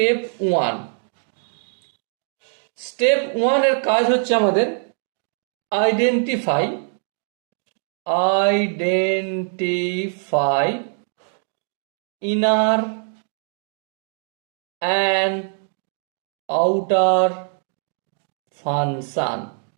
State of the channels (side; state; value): left; silent; 60 dB below the other